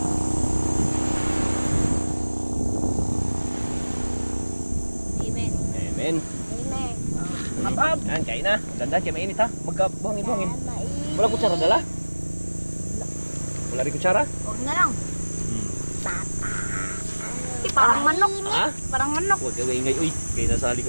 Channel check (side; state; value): both; inverted; correlation -1.00